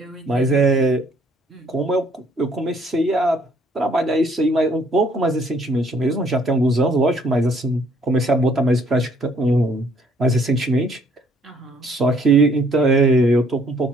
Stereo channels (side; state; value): both; normal; correlation 0.63